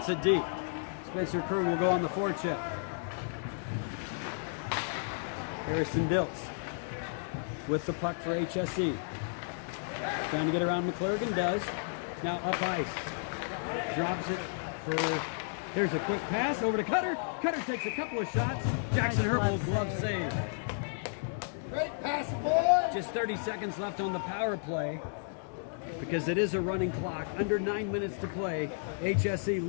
it deep. Spencer Krug will go on the forecheck. Harrison Diltz with the puck for HSE. Trying to get around McClure and does. Now up ice. Drops it for... There's a quick pass over to Cutter. Cutter takes a couple of shots. Jackson Nice Herbold glove glove save. Great pass, boy. Just 30 seconds left on the power play because it is a running clock. Under 9 minutes to play. HSE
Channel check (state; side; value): silent; right; digital silence